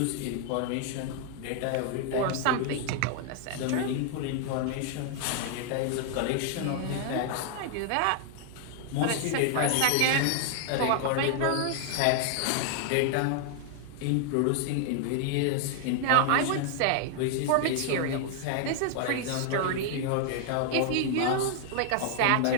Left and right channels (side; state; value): both; different; correlation 0.00